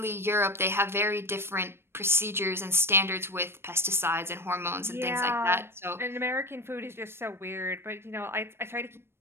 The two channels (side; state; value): left; late; 0.12 ms